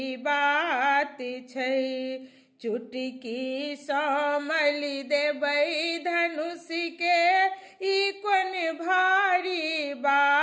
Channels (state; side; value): identical; both; correlation 1.00